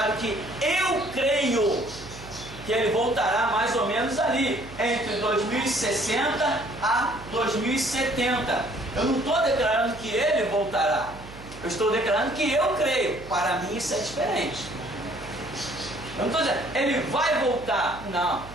que eu creio que ele voltará mais ou menos ali, entre 2060 a 2070. Eu não estou declarando que ele voltará. Eu estou declarando que eu creio. Para mim isso é diferente. Eu não estou dizendo, ele vai voltar. Não.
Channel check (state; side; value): noise; right; hum, 17 dB below the sound